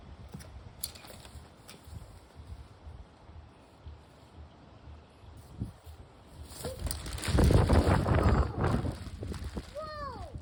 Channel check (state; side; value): identical; both; correlation 1.00